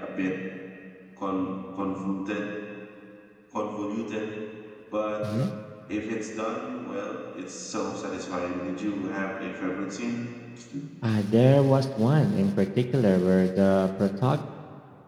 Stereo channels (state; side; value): identical; both; correlation 1.00